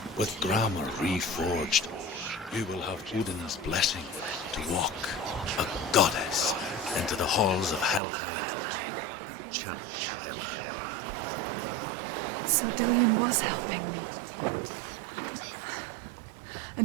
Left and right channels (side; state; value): left; drops out; at 8.0 s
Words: With grammar reforged, you will have Odin's blessing to walk, a goddess, into the halls of Helheim and challenge Hela as an equal. So Dillion was helping me.